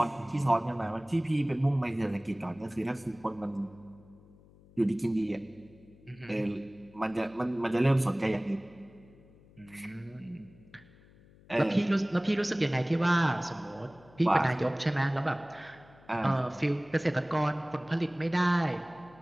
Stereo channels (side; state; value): left; noise; hum, 25 dB below the sound